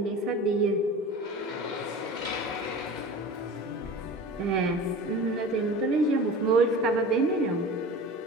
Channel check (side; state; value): both; normal; correlation 0.37